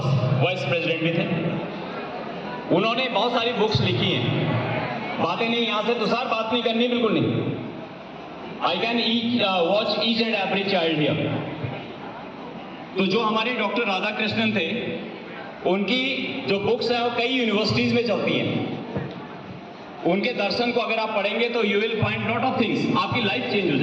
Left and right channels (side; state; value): both; identical; correlation 1.00